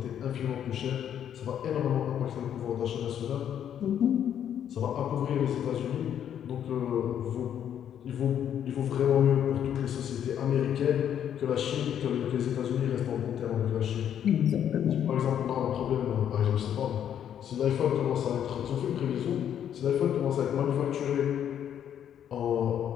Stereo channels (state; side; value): quieter; right; 9.5 dB